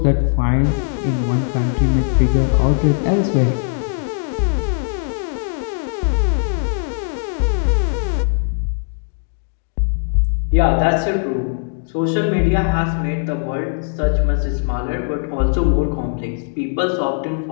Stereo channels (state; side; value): silent; right; digital silence